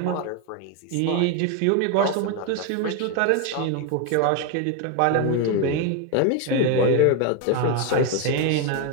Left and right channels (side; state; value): both; different; correlation 0.02